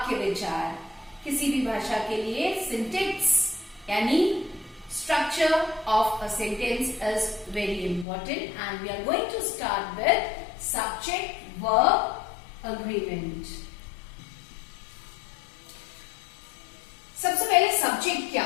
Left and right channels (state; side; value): drops out; right; at 8.1 s